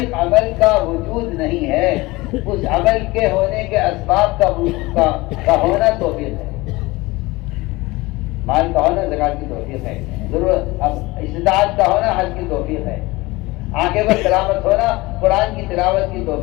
عمل کا وجود نہیں ہے, اس عمل کے ہونے کے اسباب کا ہونا توفیق ہے. مال کا ہونا زکات کی توفیق ہے, ضرورت استطاعت کا ہونا حج کی توفیق ہے, آنکھیں پر تلاوت ہونا قرآن کی تلاوت کی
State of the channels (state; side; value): quieter; right; 21.5 dB